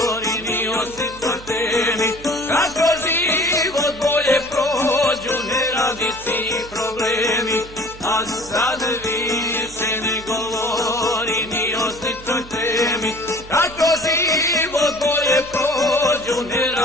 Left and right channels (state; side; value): noise; right; hum, 18 dB below the sound